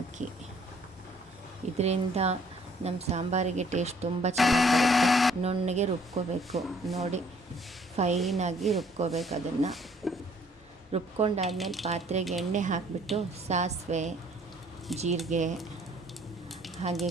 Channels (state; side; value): normal; both; correlation 0.60